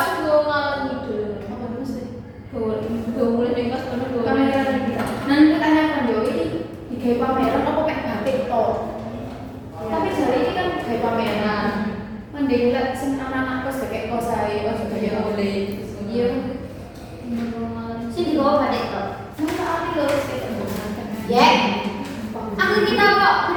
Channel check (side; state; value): both; identical; correlation 1.00